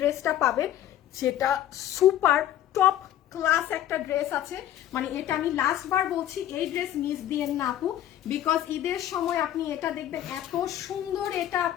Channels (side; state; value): right; quieter; 11.9 dB